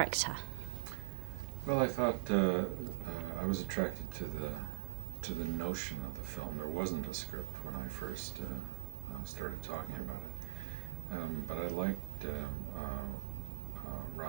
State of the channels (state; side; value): silent; left; 50 dB below the other